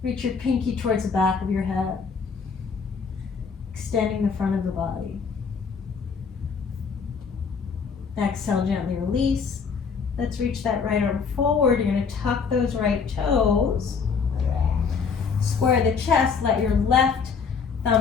Reach your pinky towards the back of your head. Extending the front of the body. Exhale, gently release. Let's reach that right arm forward. You're going to tuck those right toes. Square the chest, let your left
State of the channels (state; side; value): quieter; right; 5.7 dB